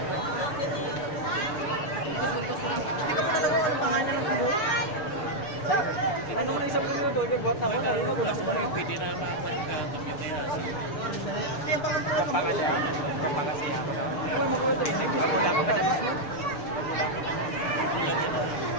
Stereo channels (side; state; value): right; late; 6.8 ms